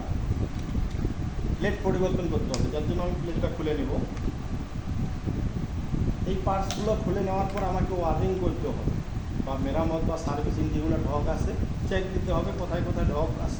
প্লেট পরিবর্তন করতে হবে, যার জন্য আমি প্লেটটা খুলে নেব। এই পার্টসগুলো খুলে নেওয়ার পর আমাকে ওয়ারিং করতে হবে, বা মেরামত বা সার্ভিসিং যেগুলো ঢক আছে চেক দিতে হবে, কোথায় কোথায় ঢক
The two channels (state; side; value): identical; both; correlation 1.00